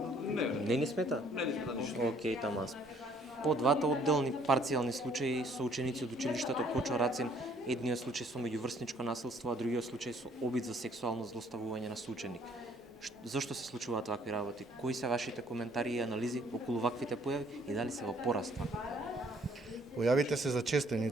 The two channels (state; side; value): normal; both; correlation 0.62